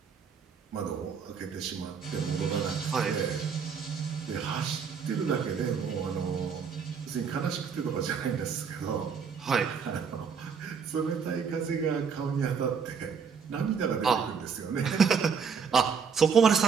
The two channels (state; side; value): quieter; left; 6.3 dB